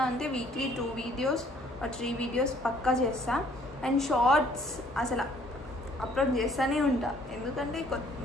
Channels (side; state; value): both; normal; correlation 0.61